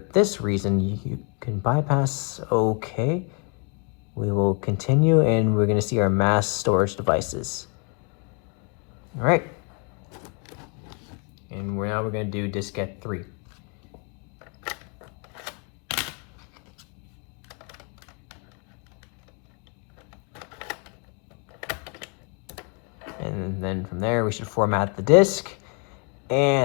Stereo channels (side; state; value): right; quieter; 37.5 dB